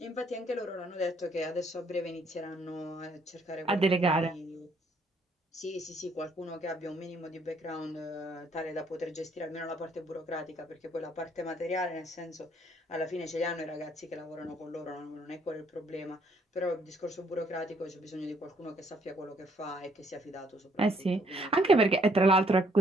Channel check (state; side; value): normal; both; correlation 0.66